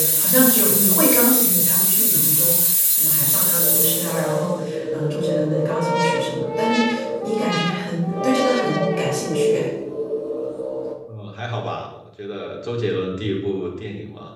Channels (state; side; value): identical; both; correlation 1.00